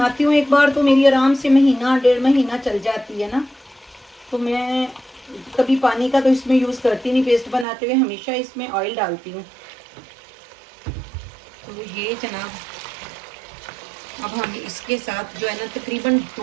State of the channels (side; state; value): left; drops out; at 7.7 s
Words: हूँ एक बार तो मेरी आराम से महीना 1.5 महीना चल जाती है ना। तो मैं कभी पानी का तो इसमें यूज़ करती नहीं, पेस्ट बनाते हुए हमेशा इसमें ऑयल डालती हूँ। तो ये जनाब अब हम इसके साथ जो है ना तकरीबन